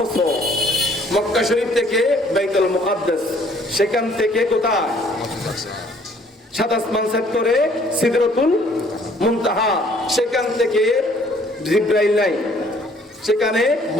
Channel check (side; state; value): both; normal; correlation 0.60